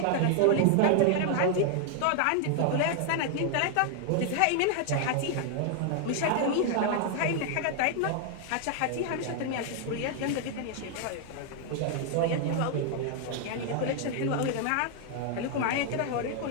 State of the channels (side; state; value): both; different; correlation 0.00